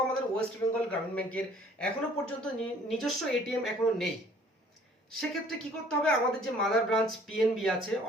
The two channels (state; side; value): normal; both; correlation 0.55